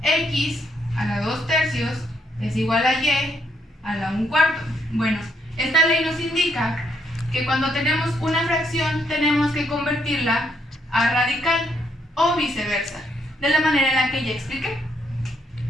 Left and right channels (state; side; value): normal; both; correlation 0.74